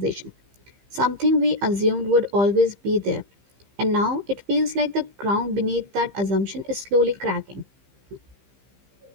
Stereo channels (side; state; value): left; late; 15 ms